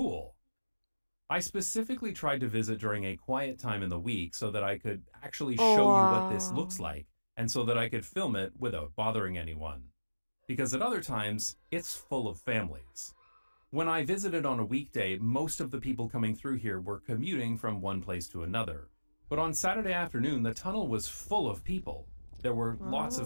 I specifically tried to visit during a quiet time in the week so that I could actually Oh, show you what this wow. looks like and so that I could film it without bothering anyone. Because at other times, it's full of families. When I visited on a weekday, most of the people coming through here were commuting from one place to another. But on Saturday afternoon, the tunnel was full of people. There were lots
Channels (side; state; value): both; inverted; correlation -1.00